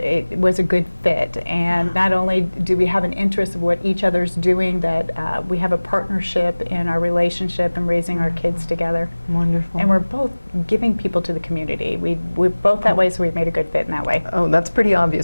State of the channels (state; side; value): inverted; both; correlation -1.00